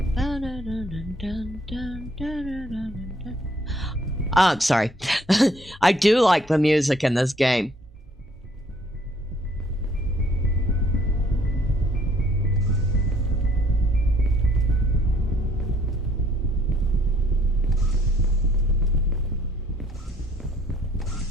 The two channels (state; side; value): normal; both; correlation 0.63